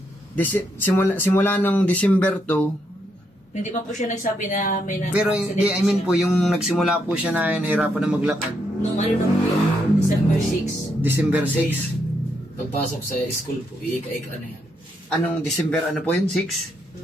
Simula ng December 2, hindi pa po siya nagsabi na may pero hindi, I mean po, yung nagsimula po siya na nahirapan na maglakad. Nung ano na po yun? December 6. December 6. Pagpasok sa school po, iika-ika na yan. Anong December, ano po yun?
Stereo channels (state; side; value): normal; both; correlation 0.78